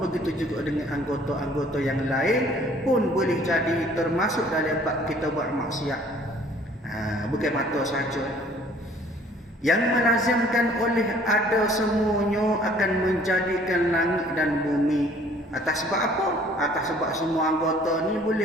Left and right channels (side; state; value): both; normal; correlation 0.56